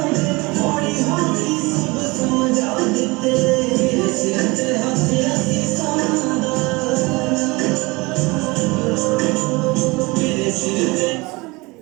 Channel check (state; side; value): quieter; left; 24.5 dB